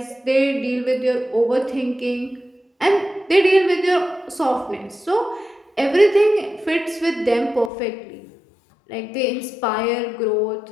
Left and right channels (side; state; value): right; drops out; at 7.7 s